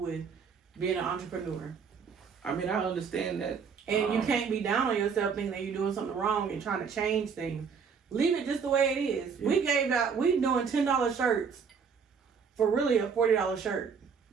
being an entrepreneur. I mean, I understand that. And you can't be down on yourself thinking that you're doing something wrong and trying to change things. Leave it just the way it is. Yeah. We doing $10 shirts for really a $40 shirt.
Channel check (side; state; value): left; quieter; 6.1 dB